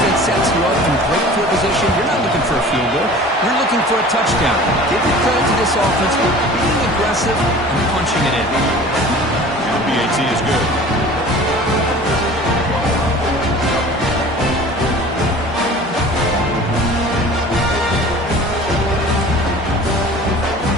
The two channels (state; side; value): normal; both; correlation 0.43